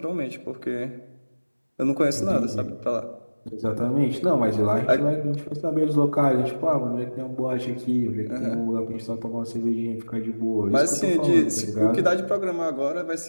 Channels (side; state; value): both; inverted; correlation -1.00